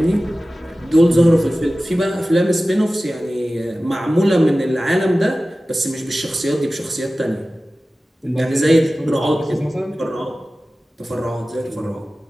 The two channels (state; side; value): normal; both; correlation 0.96